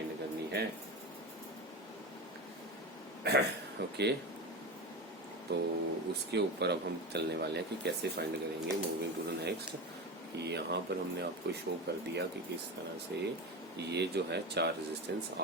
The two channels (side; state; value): both; normal; correlation 0.23